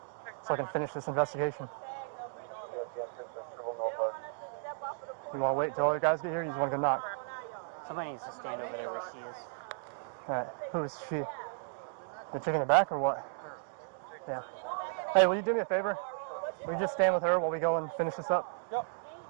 so I can finish this investigation. You want to wait until other guys get here? You just want to go knock? Somebody needs to stand over there where she is. Alright, who is she? The chick in the back or what? Yeah. Hey, will you do me a favor? Will you just stand with her while we go and finish this up? Yep.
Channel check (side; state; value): left; silent; digital silence